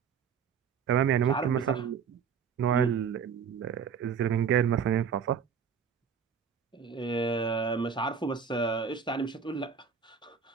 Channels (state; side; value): quieter; left; 6.8 dB